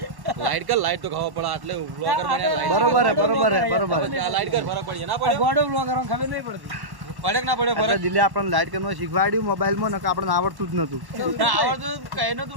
લાઈટ કર, લાઈટ તો ખાવા પડે એટલે બ્લોગર બન્યા. બરોબર હે લાઈટ કર, ફરક પડે ના પડે, ગોડો બ્લોગર ખબર નહીં પડતી. પડે ના પડે ફરક. દિલે આપણને લાઈટ કરવાનું શીખવાડ્યું મોબાઈલમાં, નકર આપણને આવડતું જ નતું. આવડતું કઈ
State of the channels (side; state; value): left; late; 1.1 ms